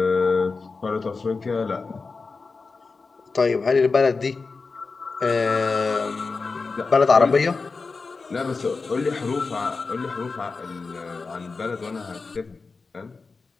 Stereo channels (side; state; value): right; quieter; 4.3 dB